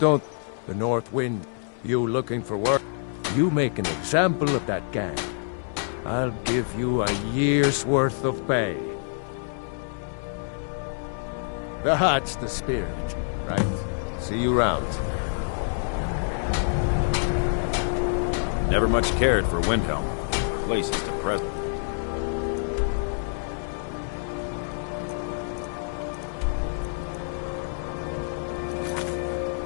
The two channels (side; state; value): right; silent; 61 dB below the other